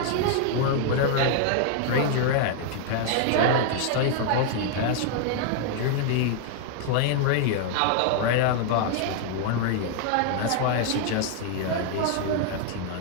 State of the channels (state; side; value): different; both; correlation 0.00